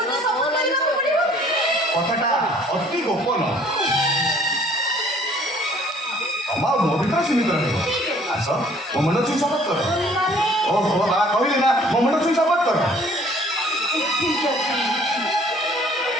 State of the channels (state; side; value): normal; both; correlation 0.56